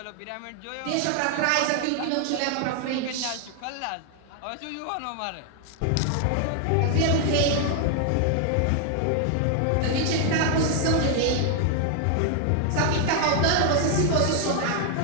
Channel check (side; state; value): both; different; correlation 0.00